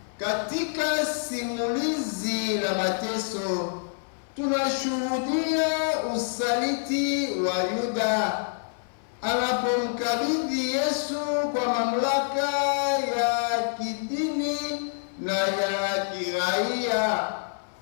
Katika simulizi la mateso tunashuhudia usaliti wa Yuda anapomkabidhi Yesu kwa mamlaka ya kidini na ya kiraia.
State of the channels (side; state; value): right; silent; 60 dB below the other